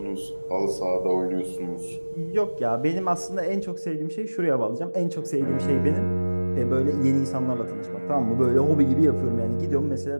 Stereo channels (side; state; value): both; inverted; correlation -1.00